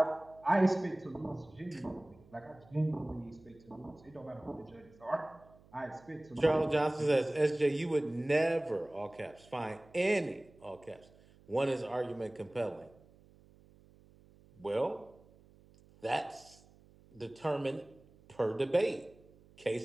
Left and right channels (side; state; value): right; noise; hum, 26 dB below the sound